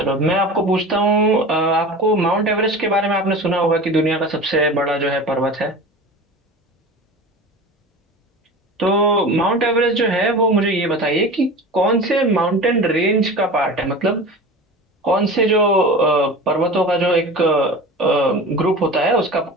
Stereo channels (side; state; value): both; normal; correlation 0.34